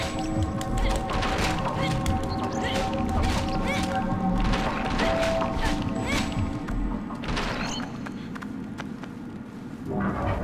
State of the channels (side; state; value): both; identical; correlation 1.00